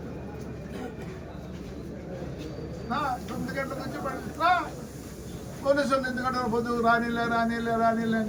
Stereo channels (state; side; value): identical; both; correlation 1.00